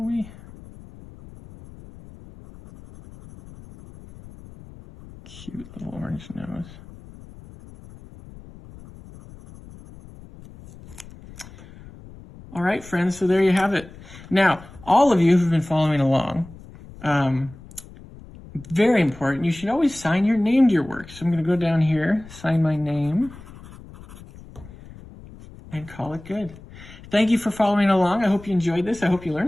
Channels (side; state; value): left; noise; rumble, 19 dB below the sound